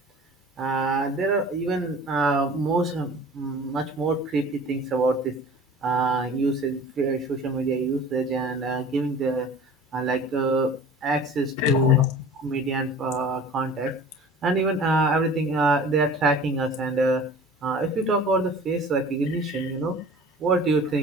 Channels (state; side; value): normal; both; correlation 0.43